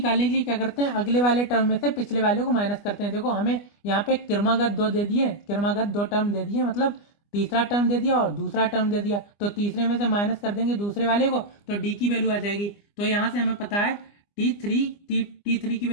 के लिए क्या करते हैं, अगले वाले टर्म में से पिछले वाले को माइनस करते हैं। देखो हमें यहाँ पे क्रमागत 2 दे दिए, क्रमागत 2 टर्म दे दिए, मतलब तीसरा टर्म दे दिया और दूसरा टर्म दे दिया, तो तीसरे में से माइनस कर देंगे दूसरे वाले को, तो डी की वैल्यू आ जाएगी। तो यहाँ से हमें पता है T3 की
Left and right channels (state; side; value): late; right; 25 ms